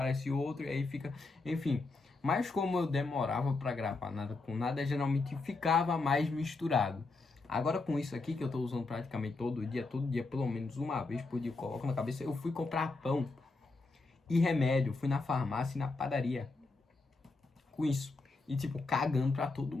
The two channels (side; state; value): right; quieter; 3.6 dB